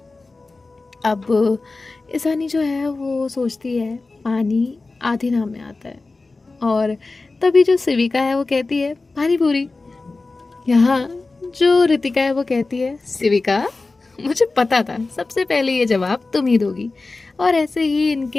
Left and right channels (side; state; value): right; quieter; 3.6 dB